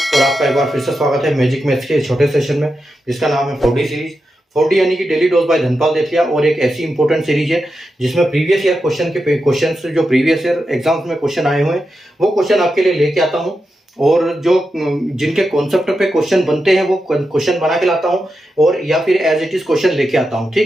आपका एक बार फिर से स्वागत है मैजिक मैथ्स के छोटे सेशन में, जिसका नाम है 4D सीरीज। 4D यानी कि डेली डोज बाय धनपाल देतिया, और एक ऐसी इंपॉर्टेंट सीरीज है जिसमें प्रीवियस ईयर क्वेश्चन जो प्रीवियस ईयर एग्जाम्स में क्वेश्चन आए हुए हैं वो क्वेश्चन आपके लिए लेके आता हूँ, और जो जिनके कॉन्सेप्ट पे क्वेश्चन बनते हैं वो क्वेश्चन बना के लाता हूँ, और या फिर एज इट इज क्वेश्चन लेके आता हूँ।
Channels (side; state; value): both; normal; correlation 0.89